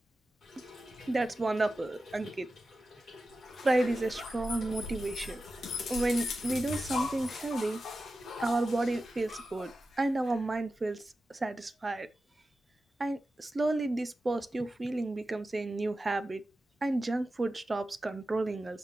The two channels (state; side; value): normal; both; correlation 0.93